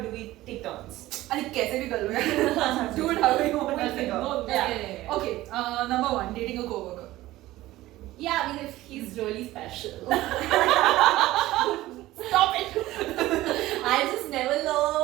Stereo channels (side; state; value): left; quieter; 16.6 dB